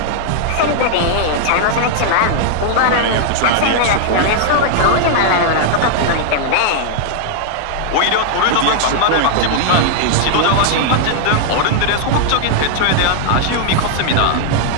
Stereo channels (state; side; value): different; both; correlation -0.01